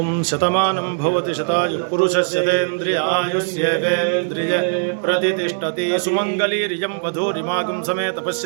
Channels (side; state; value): left; silent; 66 dB below the other